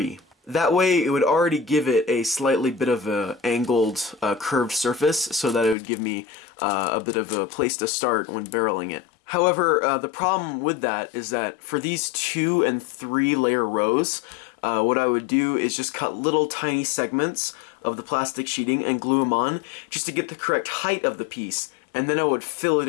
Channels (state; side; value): drops out; right; at 5.8 s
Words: That way it would already give it a slightly bit of a angled, curved surface, so that it would give me a bit of a place to start when barreling it. However, the problem with that is that for these 2 and 3 layer rows, what I would do is just cut little tiny segments of the plastic sheeting and glue them on just to get the correct height of the piece. And then I would fill it